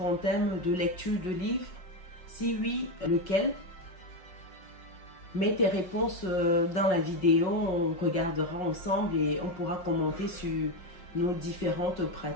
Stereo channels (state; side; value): late; right; 5.4 ms